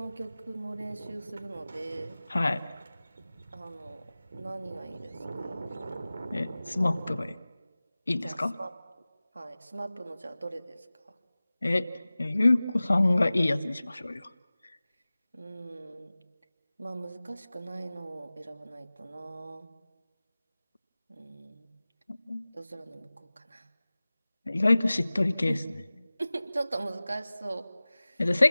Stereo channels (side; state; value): both; inverted; correlation -0.98